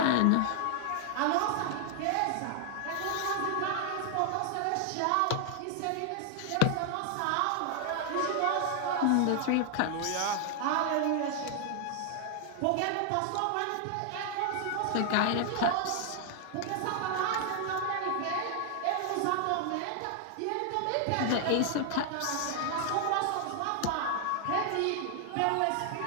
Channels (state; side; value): different; both; correlation 0.00